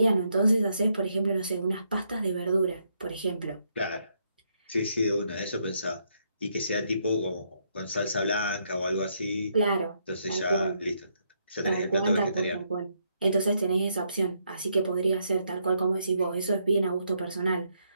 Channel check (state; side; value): inverted; both; correlation -0.76